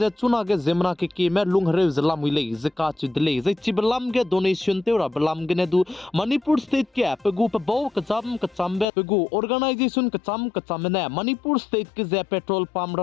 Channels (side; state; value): right; drops out; at 8.8 s